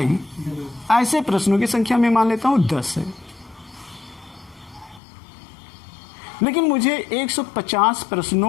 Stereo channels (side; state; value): right; drops out; at 5.0 s